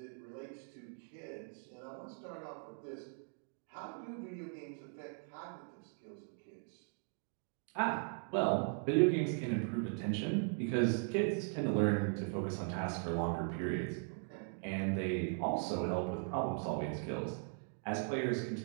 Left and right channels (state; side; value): silent; left; 52 dB below the other